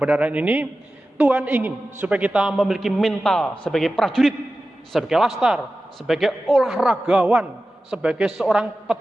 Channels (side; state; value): both; normal; correlation 0.95